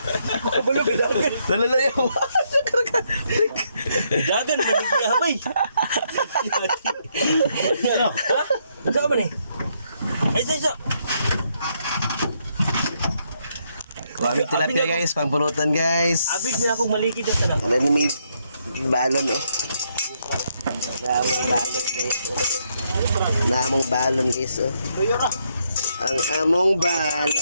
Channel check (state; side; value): inverted; both; correlation -0.75